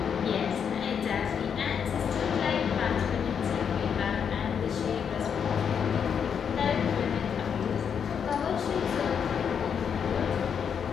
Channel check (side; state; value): right; quieter; 7.3 dB